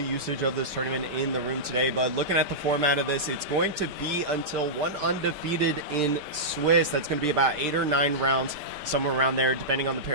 of this tournament in the room today. But looking at the format of this, it's going to be until one undefeated in Swiss. That's going to be about 8 or 9 rounds, somewhere around there, depending on the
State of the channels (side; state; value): left; late; 5.1 ms